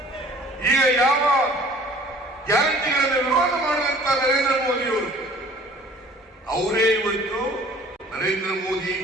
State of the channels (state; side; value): normal; both; correlation 0.51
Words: ಈಗ ಯಾವ ಗ್ಯಾರಂಟಿಗಳನ್ನು ವಿರೋಧ ಮಾಡಿದಂತ ನರೇಂದ್ರ ಮೋದಿಯವರು ಅವರೇ ಇವತ್ತು ನರೇಂದ್ರ ಮೋದಿ